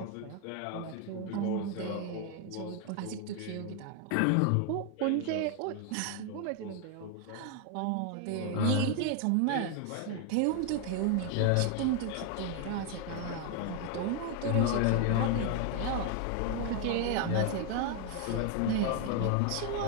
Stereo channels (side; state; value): both; different; correlation 0.01